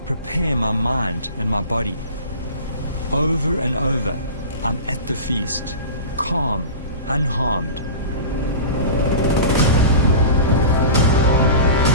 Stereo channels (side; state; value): both; inverted; correlation -0.33